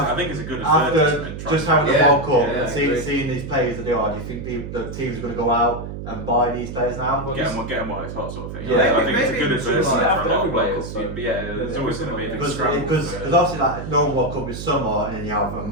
think it's a good after just having the World Cup and seeing these players that they are? Do you think the teams are going to go out and buy these players now? Get them while it's hot, sort of thing. Yeah, I think it's a good advertisement for a lot of players. There's always going to be a big scramble. Because obviously like normal World Cup is summer, and then you have a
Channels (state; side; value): noise; right; hum, 8 dB below the sound